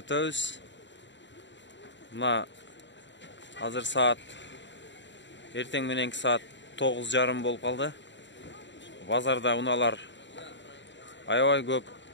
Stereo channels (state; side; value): late; right; 0.53 ms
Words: Мына азыр саат эртең мененки саат 9:30 болуп калды. Базарда унаалар аябай көп.